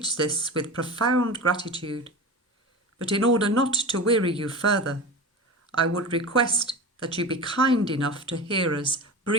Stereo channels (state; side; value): normal; both; correlation 0.30